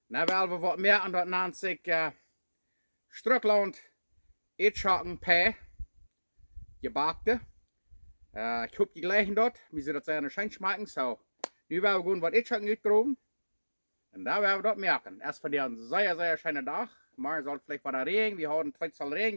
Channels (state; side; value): inverted; both; correlation -1.00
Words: Dan willen we wat merken dat nennt zich Schtrucklaunt Ätschoken P. Gjebackte. Ik hoop die gleichen dort. We zullen dat zijn schön schmecken. So, nu willen we gewoon wat Ätschoken uitgroeven. En daar willen we dat merken. Erst voor een zeer schöne dag. Maar soll vielleicht bei der Regen. Wir haben zweimal Regen